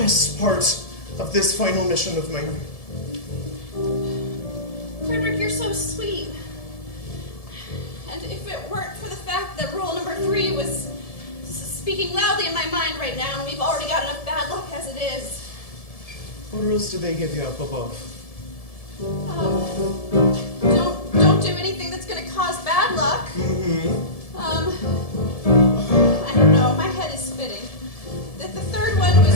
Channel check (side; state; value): right; late; 1.7 ms